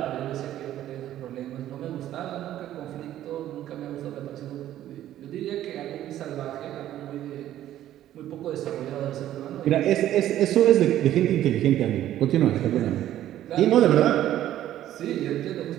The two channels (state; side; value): quieter; left; 12.6 dB